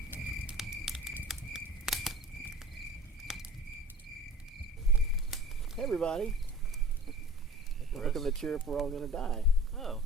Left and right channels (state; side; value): normal; both; correlation 0.43